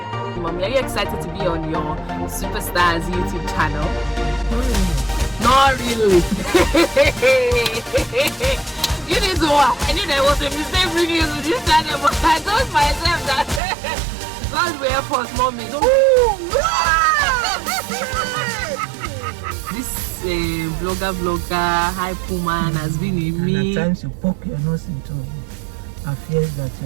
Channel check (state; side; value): drops out; left; at 13.6 s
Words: are you excited to be on your Superstars YouTube channel? Not really. You need to watch. I knew there was a mistake bringing you to this channel, but I told myself that God will help us, Mommy. This vlogger, hype woman has been in me. And at times you poke your nose into affairs that